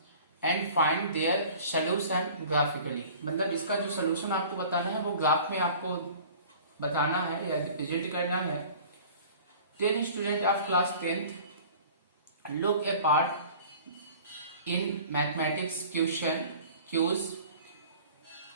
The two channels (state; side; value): inverted; both; correlation -0.45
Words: and find their solution graphically. मतलब इसका जो सोल्यूशन आपको बताना है वो ग्राफ में आपको बताना है या रिप्रेजेंट करना है। 10 students of class 10th look a part in mathematics question cues.